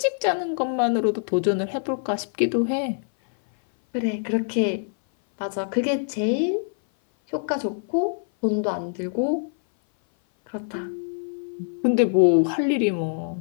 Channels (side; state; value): right; silent; 58 dB below the other